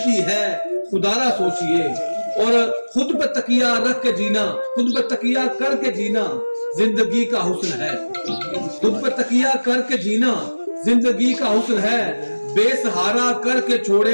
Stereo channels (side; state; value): both; inverted; correlation -1.00